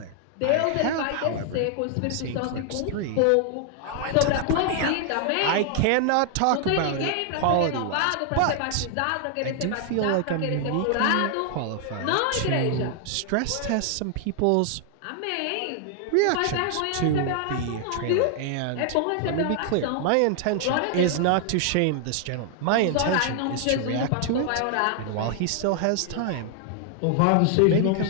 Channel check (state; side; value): different; both; correlation 0.00